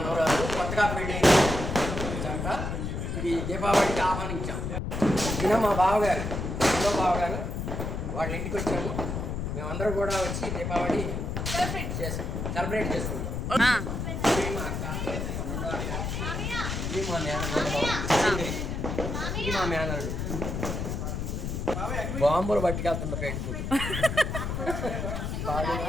కొత్తగా పెళ్ళి చక్క ఈ దీపావళికి ఆహ్వానించాం. ఈయన మా బావగారు వాళ్ళ ఇంటికి వచ్చాము. మేమందరం కూడా వచ్చి దీపావళి సెలబ్రేట్ చేసుకుంటాం. మా మేనడు బాంబులు పట్టుకెళ్తున్న పెట్టుకుంటు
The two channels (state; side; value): noise; left; rumble, 3 dB below the sound